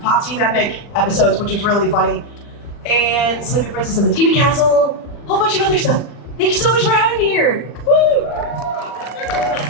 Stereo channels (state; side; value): late; right; 40 ms